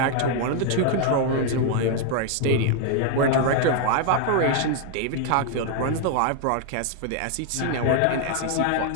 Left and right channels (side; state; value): both; different; correlation 0.00